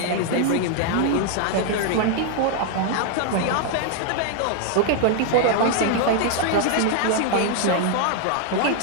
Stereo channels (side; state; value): both; different; correlation 0.00